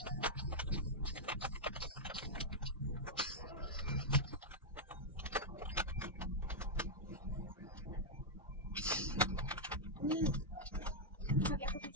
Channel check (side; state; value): both; normal; correlation -0.04